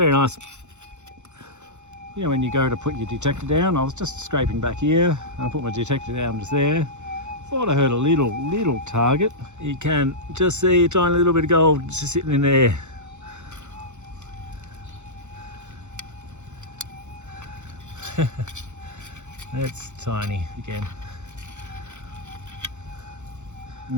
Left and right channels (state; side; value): late; left; 0.84 ms